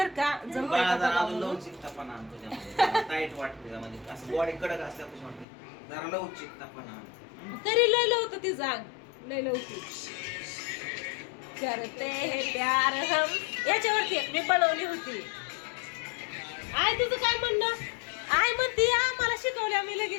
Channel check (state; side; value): drops out; right; at 5.5 s